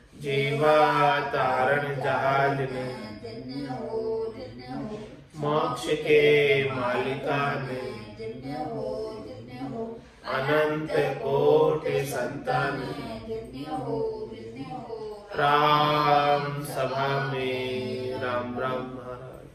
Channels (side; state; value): both; identical; correlation 1.00